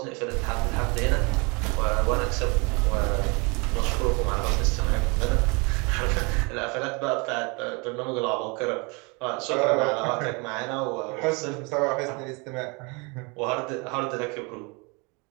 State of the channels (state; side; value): quieter; left; 30.0 dB